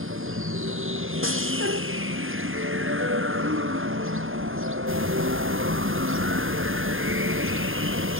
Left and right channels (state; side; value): late; left; 0.59 ms